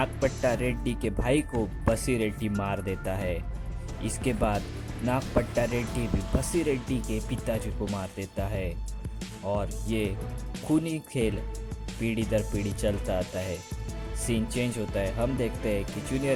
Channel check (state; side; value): identical; both; correlation 1.00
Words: रेड्डी के भाई को बसी रेड्डी मार देता है। इसके बाद नागपट्टा रेड्डी भी बसी रेड्डी के पिताजी को मार देता है और ये खूनी खेल पीढ़ी दर पीढ़ी चलता आता है। सीन चेंज होता है। हम देखते हैं कि